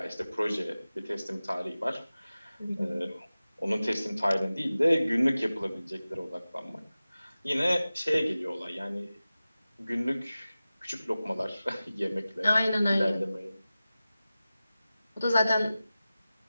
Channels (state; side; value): inverted; both; correlation -0.96